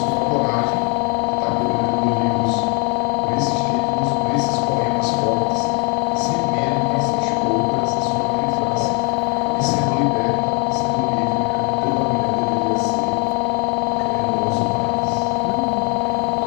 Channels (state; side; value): quieter; right; 34.5 dB